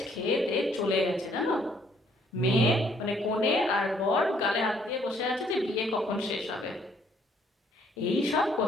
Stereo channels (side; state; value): both; normal; correlation 0.65